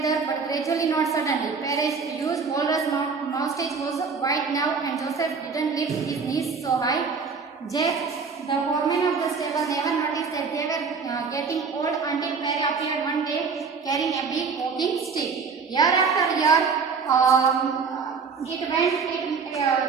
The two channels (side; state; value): left; quieter; 5.3 dB